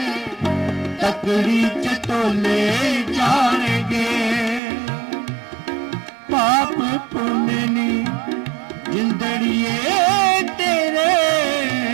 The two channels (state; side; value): drops out; left; at 4.6 s